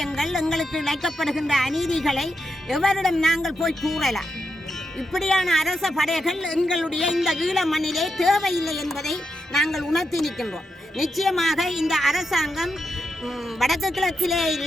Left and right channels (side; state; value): both; normal; correlation 0.85